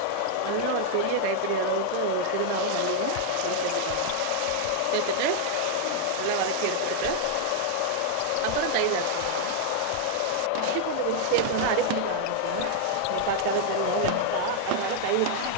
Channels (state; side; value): different; both; correlation 0.00